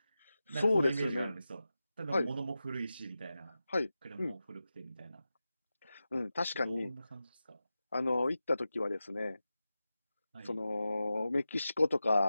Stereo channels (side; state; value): both; inverted; correlation -0.93